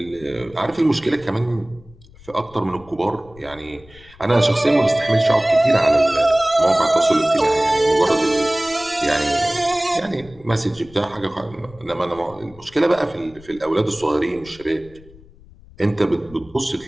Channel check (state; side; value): noise; left; rumble, 23 dB below the sound